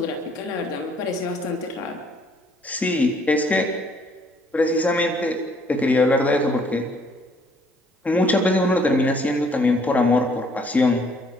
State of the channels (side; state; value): both; normal; correlation 0.63